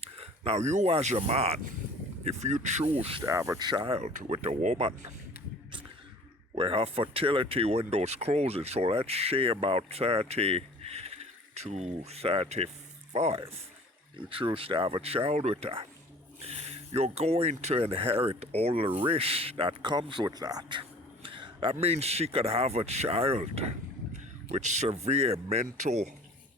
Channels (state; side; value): normal; both; correlation 0.46